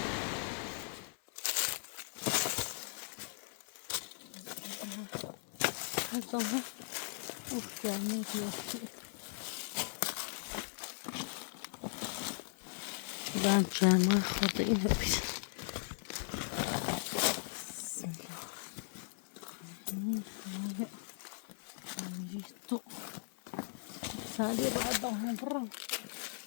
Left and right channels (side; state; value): right; silent; 52 dB below the other